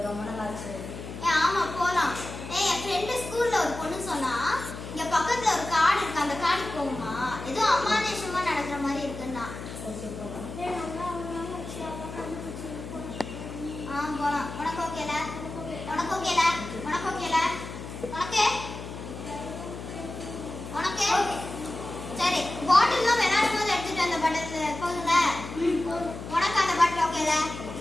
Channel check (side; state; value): left; noise; hum, 10 dB below the sound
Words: ரொம்ப நல்லா ஆச்சு. ஆமா போலாம். என் ஃப்ரெண்டு ஸ்கூல்ல ஒரு பொண்ணு சொன்னா இங்க பக்கத்துல ஒரு காடு இருக்கு, அந்த காடுக்கு போகுமா, ஏதோ அமானுஷமா நடக்கிற மாதிரி இருக்குன்னா. போலாம். உனக்கு ஓகேல? உனக்கு ஓகேல? உனக்கு ஓகேல? உனக்கு உனக்கு சரி. பாட்டில்லாம் விளையாடும் போது எடுத்துட்டு அந்த பாட்டில் போதுங்க. உனக்கு அந்த பாட்டில் ஓகேல?